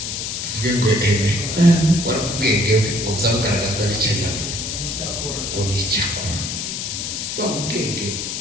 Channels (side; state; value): left; noise; hiss, 4 dB below the sound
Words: tuvuge ngo eme warakubwenge ngo uzabugaragazwa n'icyanyabwo ngo ni icyakora wa ubwenge